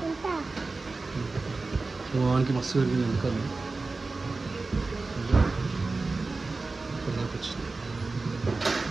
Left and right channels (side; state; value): left; quieter; 3.7 dB